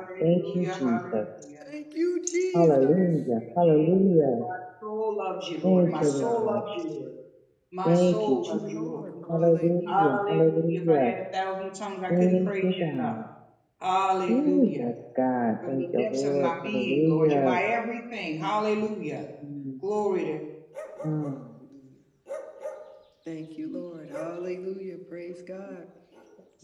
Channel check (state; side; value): identical; both; correlation 1.00